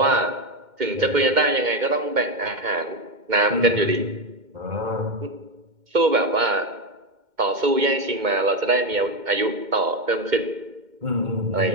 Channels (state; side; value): late; left; 2.2 ms